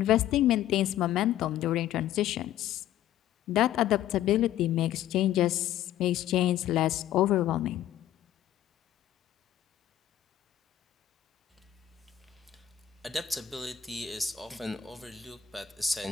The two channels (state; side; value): quieter; right; 11.6 dB